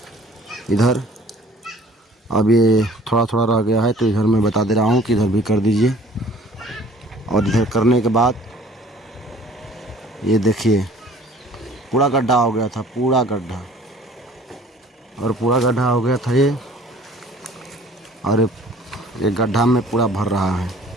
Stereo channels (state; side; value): normal; both; correlation 0.51